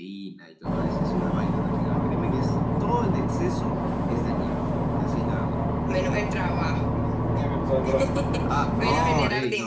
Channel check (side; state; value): both; identical; correlation 1.00